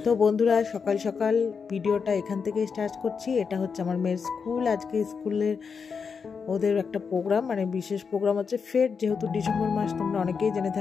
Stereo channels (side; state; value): right; quieter; 5.7 dB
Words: তো বন্ধুরা, সকাল সকাল ভিডিওটা এখান থেকে স্টার্ট করছি। এটা হচ্ছে আমার মেয়ের স্কুল। আজকে স্কুলের ওদের একটা প্রোগ্রাম, মানে বিশেষ প্রোগ্রাম হচ্ছে ফেট। যেহেতু ডিসেম্বর মাস, তোমরা অনেকেই জেনে